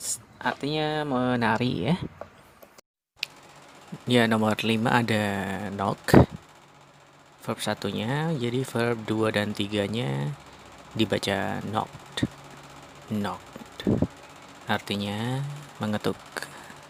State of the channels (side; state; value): both; identical; correlation 1.00